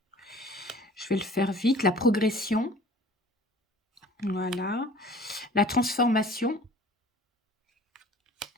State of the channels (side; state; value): both; normal; correlation 0.48